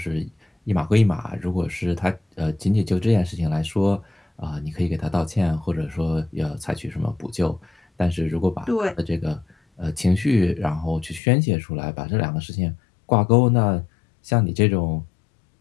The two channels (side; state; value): right; drops out; at 11.2 s